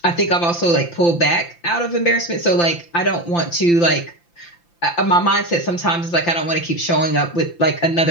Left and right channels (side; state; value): right; late; 5.8 ms